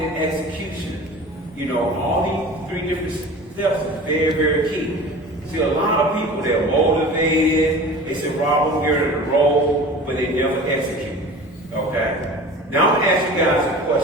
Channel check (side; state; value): both; normal; correlation 0.38